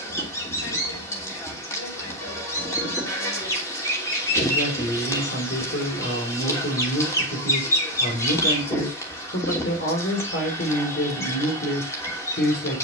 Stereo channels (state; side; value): normal; both; correlation 0.11